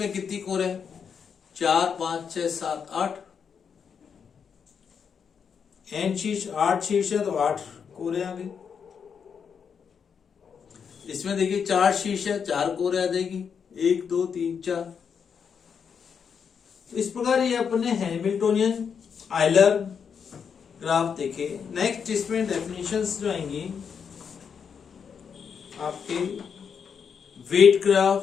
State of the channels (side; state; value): right; quieter; 6.8 dB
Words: कितनी कोरें हैं, 4 5 6 7 8। n शीर्ष 8 शीर्ष है तो 8 कोरे आ गई। इसमें देखिए 4 शीर्ष है, 4 कोरे आ जाएगी, 1 2 3 4। तो इस प्रकार ये अपने हैमिल्टोनियन आयलर ग्राफ देखे। नेक्स्ट इसमें डेफिनेशंस जो आएंगी आपके वेट